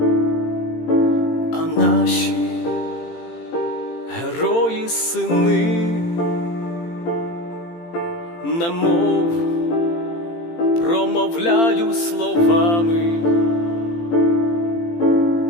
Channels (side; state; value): right; late; 18 ms